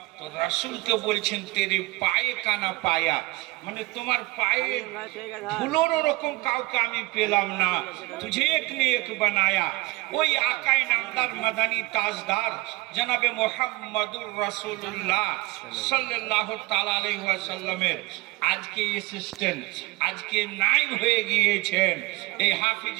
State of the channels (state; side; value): quieter; left; 22.0 dB